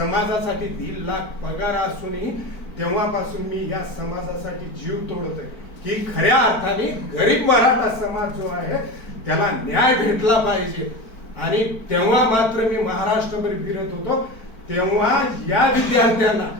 1.5 लाख पगार असूनही तेव्हापासून मी या समाजासाठी जीव तोडतोय की खऱ्या अर्थाने गरीब मराठा समाज जो आहे त्याला न्याय भेटला पाहिजे. आणि तेव्हा मात्र मी महाराष्ट्रभर फिरत होतो. तेव्हा या विद्यार्थ्यांना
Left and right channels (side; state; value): right; late; 4.5 ms